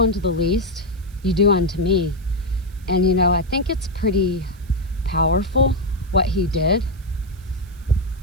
the least, you do unto me. And I think it's pretty powerful what he did,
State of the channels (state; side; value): noise; right; hiss, 28 dB below the sound